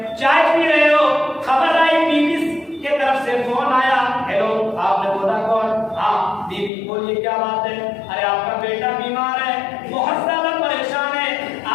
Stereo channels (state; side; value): drops out; right; at 6.7 s